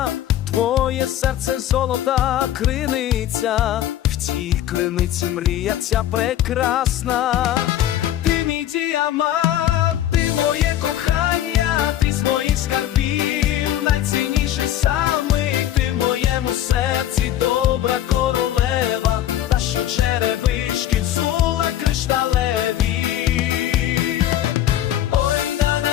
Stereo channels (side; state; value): right; quieter; 12.2 dB